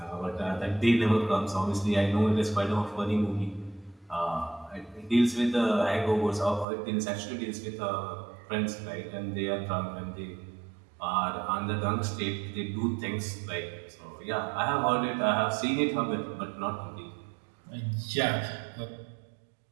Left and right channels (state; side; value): drops out; left; at 6.7 s